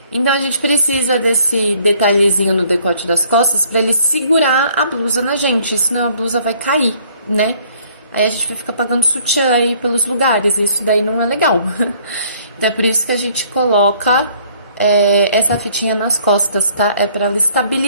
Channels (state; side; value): inverted; both; correlation -0.60